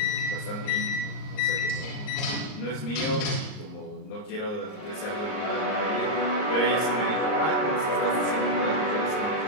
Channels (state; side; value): late; right; 38 ms